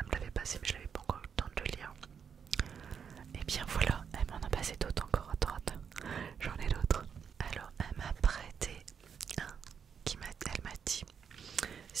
l'avait passé mais je n'avais pas encore eu le temps de le lire. Et bien voilà, elle m'en a passé d'autres encore à droite. J'en ai d'autres. Alors elle m'a prêté un elle m'a dit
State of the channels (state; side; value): quieter; left; 7.1 dB